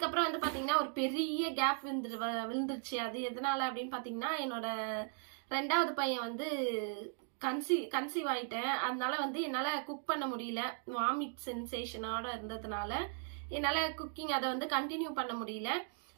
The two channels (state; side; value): silent; left; 53 dB below the other